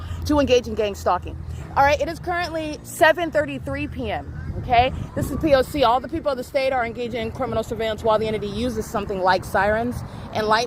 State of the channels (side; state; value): both; identical; correlation 1.00